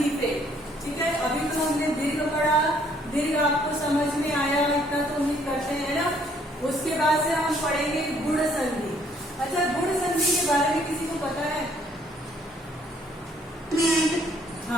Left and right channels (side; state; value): both; normal; correlation 0.64